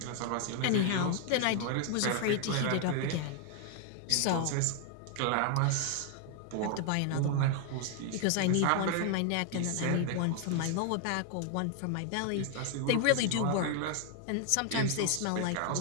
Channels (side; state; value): both; different; correlation 0.00